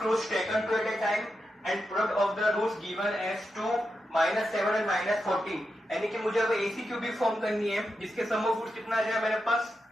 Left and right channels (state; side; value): normal; both; correlation 0.88